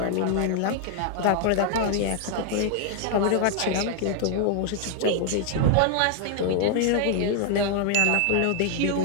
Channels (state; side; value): different; both; correlation 0.00